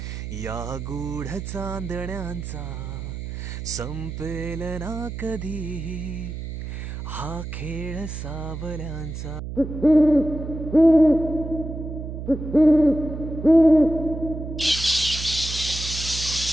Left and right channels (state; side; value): noise; right; hum, 7 dB below the sound